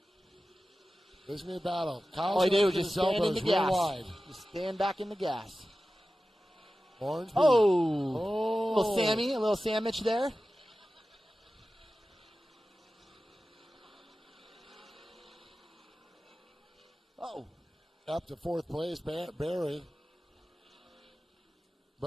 This is a battle. Kyle's he did just stand in the gas. Wide. Just stand back in the gas. Ormsby. A little sandwich there. up to fourth place, Barry.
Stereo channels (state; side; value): normal; both; correlation 0.94